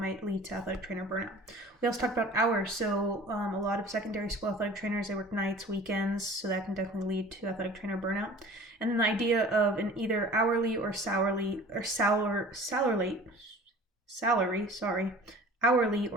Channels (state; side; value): normal; both; correlation 0.44